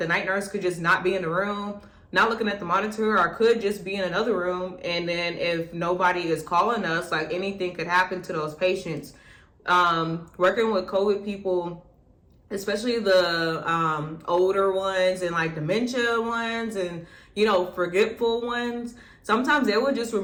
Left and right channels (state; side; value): identical; both; correlation 1.00